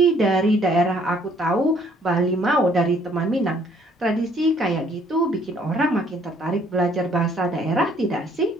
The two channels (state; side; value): normal; both; correlation 0.62